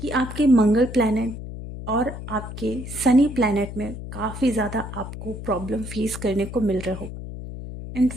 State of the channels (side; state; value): left; noise; hum, 10 dB below the sound